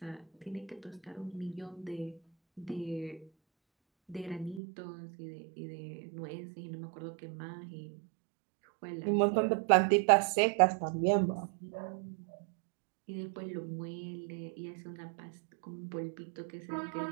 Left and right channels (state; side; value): drops out; left; at 4.6 s